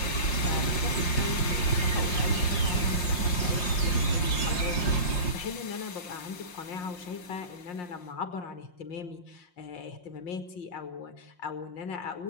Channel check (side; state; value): right; late; 5.6 ms